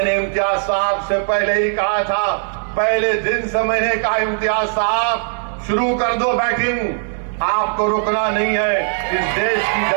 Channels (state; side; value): silent; left; 60 dB below the other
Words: इम्तियाज साहब से पहले ही कहा था, पहले दिन से मैंने कहा इम्तियाज साहब शुरू कर दो बैटिंग, आपको रुकना नहीं है। इस देश की